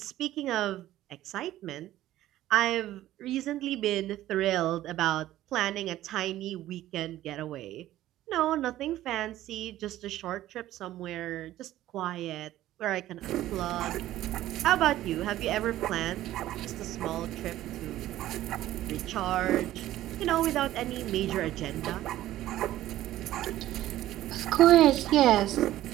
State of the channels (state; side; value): quieter; left; 14.2 dB